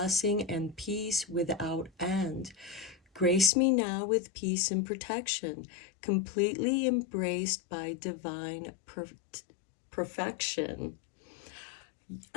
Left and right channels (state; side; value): drops out; right; at 3.5 s